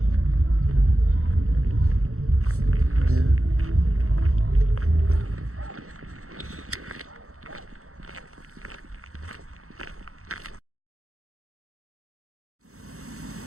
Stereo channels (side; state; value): left; late; 0.64 ms